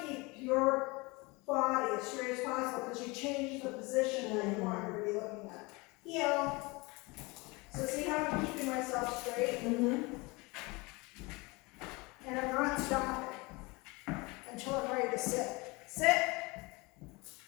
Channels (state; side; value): quieter; right; 25.4 dB